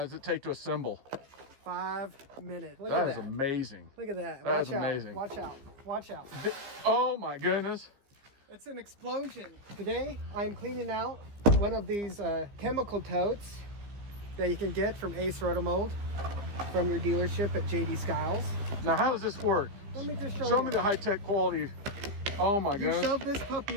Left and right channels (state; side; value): late; left; 15 ms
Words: it take to assemble? 5 minutes. Look That at is that. amazing. Look at that. That is Watch out. amazing. Watch out. Watch out. Oh my goodness. It's an explosion. Today, I'm cleaning out one of these chemical totes that you can get from Ace Rotomold from your dealership at JD Skiles. Now how does this work? Let me just show Show you. me the high-tech quality. Oh my You goodness. shove this